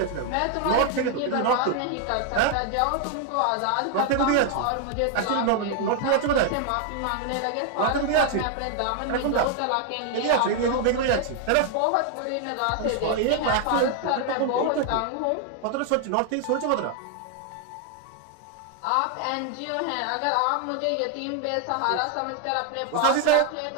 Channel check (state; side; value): different; both; correlation 0.00